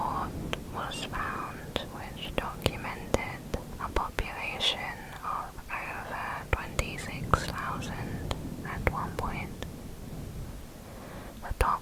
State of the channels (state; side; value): identical; both; correlation 1.00